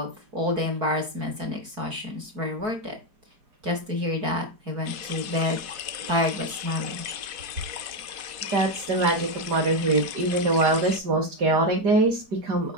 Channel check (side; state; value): left; late; 4.6 ms